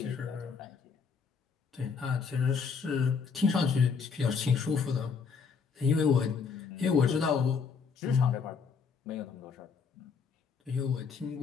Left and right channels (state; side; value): quieter; right; 5.6 dB